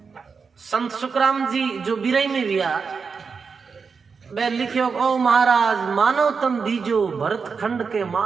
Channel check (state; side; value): quieter; left; 5.4 dB